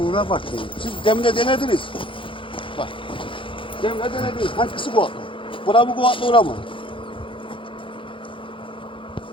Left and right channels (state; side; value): late; right; 0.25 ms